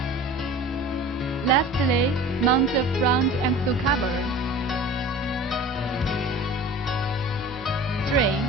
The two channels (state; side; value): normal; both; correlation 0.40